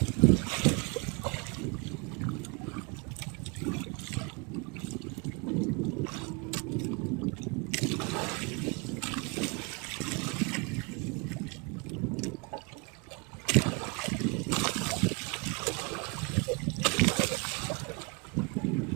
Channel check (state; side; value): quieter; left; 32.0 dB